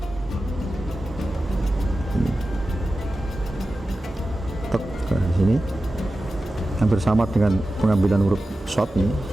Ini. Tek di sini. Yang bersama dengan pengambilan huruf short ini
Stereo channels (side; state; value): both; normal; correlation 0.94